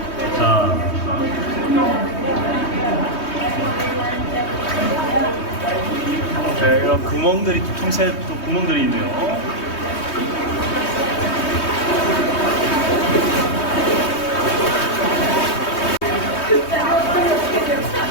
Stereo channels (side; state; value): right; late; 3.2 ms